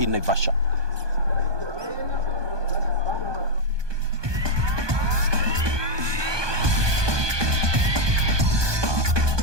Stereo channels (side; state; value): left; late; 1.2 ms